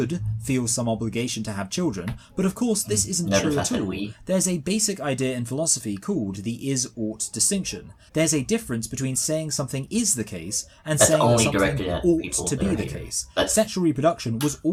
feel some obligation to have children, but of course this isn't true at all. There's a basic idea in philosophy called the is-ought distinction. There's a difference between saying something is the case and saying that something ought to be the case. Sexual reproduction was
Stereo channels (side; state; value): both; identical; correlation 1.00